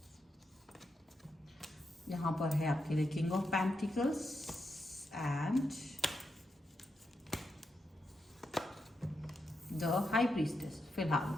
यहां पर है आपके लिए king of pentacles and the high priestess. फिलहाल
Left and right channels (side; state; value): both; normal; correlation 0.85